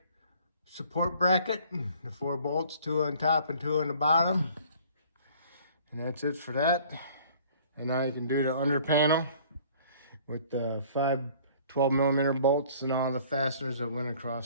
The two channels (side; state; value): both; inverted; correlation -0.53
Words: support bracket. The 4 bolts, 2 on top and 2 on the bottom. And that's it for that. And now you can do the under panel with the 5 12mm bolts and all the fasteners that went